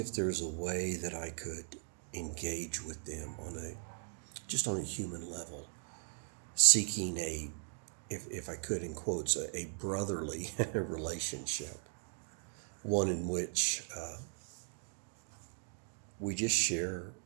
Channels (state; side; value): silent; left; 52 dB below the other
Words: there's a way that I could engage with them on a human level, seeking if I could, in quotes, a brotherly relationship, one in which we just share